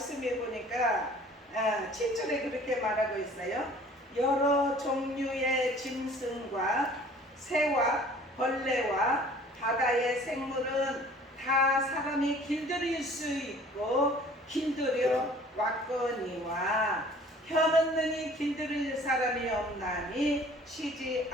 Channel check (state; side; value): normal; both; correlation 0.51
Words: 보니까 7절에 그렇게 말하고 있어요. 여러 종류의 짐승과 새와 벌레와 바다의 생물은 다 사람이 길들일 수 있고 길들여 왔거니와 혀없느니 길들일 사람이 없나니 쉬지